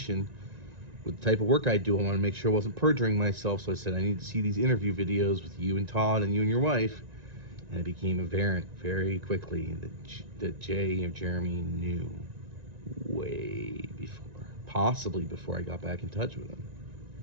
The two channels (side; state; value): left; late; 1.9 ms